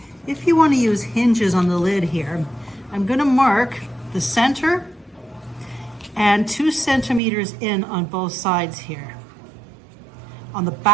If you want to use hinges on the lid here, I'm going to mark the center and 2 centimeters in on both sides here, on the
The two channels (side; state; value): left; drops out; at 7.2 s